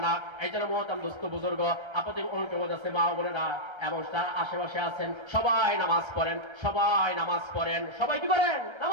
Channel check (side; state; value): left; late; 1.3 ms